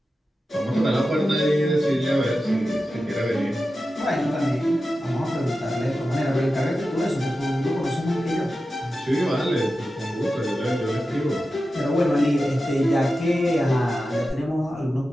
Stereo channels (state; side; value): normal; both; correlation 0.92